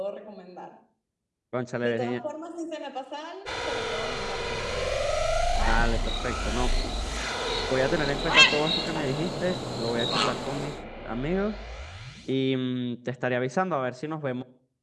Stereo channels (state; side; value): identical; both; correlation 1.00